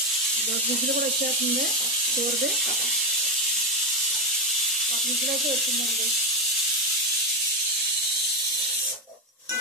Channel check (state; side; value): normal; both; correlation 0.10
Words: విజిల్ కూడా వచ్చేస్తుంది. కూరది 1 విజిల్ అయితే వచ్చిందండి.